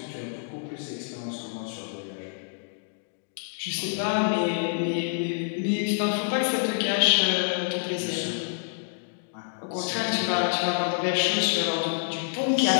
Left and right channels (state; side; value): silent; right; digital silence